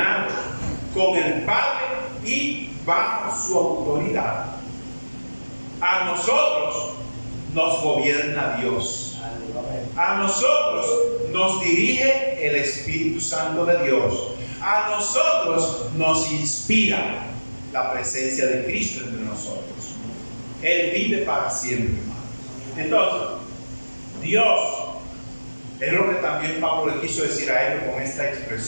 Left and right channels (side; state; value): both; inverted; correlation -1.00